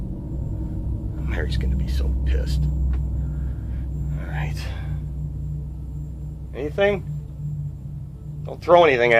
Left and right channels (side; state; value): both; identical; correlation 1.00